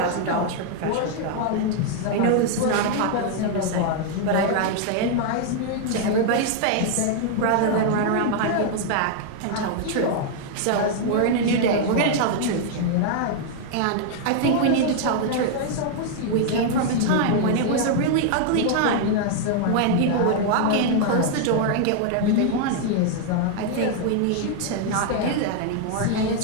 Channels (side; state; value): both; different; correlation 0.00